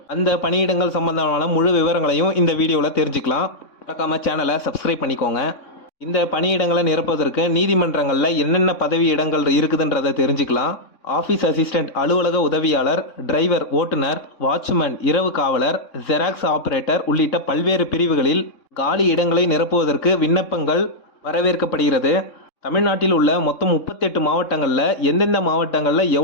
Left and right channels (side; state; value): right; late; 3.6 ms